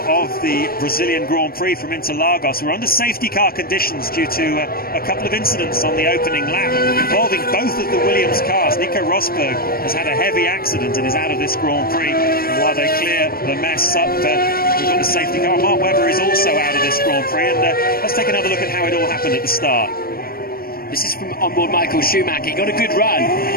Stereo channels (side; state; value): right; late; 0.43 ms